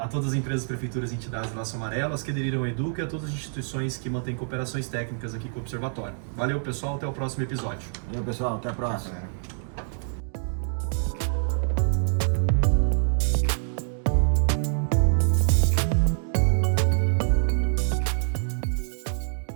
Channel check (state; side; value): silent; left; digital silence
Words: todas as empresas, prefeituras e entidades do Laço Amarelo, as que aderiram ao Educa e a todas as instituições que mantêm cooperações técnicas aqui com o Observatório. Valeu, pessoal, até o próximo episódio. Valeu, pessoal, até a próxima. Galera.